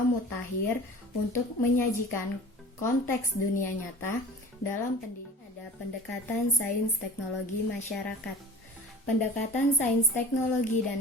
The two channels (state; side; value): normal; both; correlation 0.42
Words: mutakhir untuk menyajikan konteks dunia nyata dalam pendidikan. Ada pendekatan sains teknologi masyarakat. Pendekatan sains teknologi